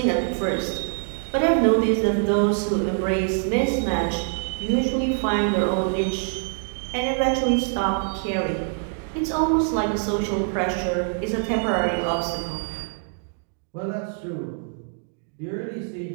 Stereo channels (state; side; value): silent; left; 58 dB below the other